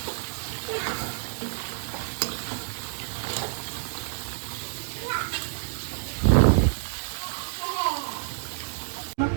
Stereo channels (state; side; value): silent; left; 59 dB below the other